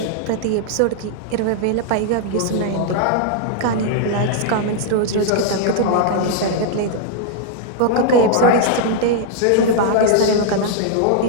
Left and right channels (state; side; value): different; both; correlation -0.01